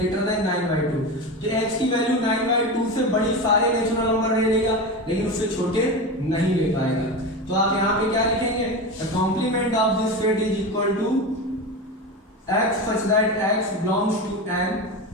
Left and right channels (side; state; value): both; normal; correlation 0.23